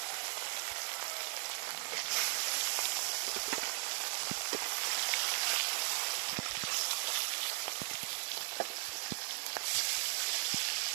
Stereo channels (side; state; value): left; silent; 53 dB below the other